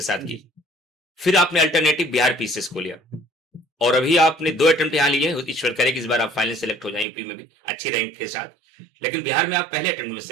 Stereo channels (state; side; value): drops out; left; at 7.1 s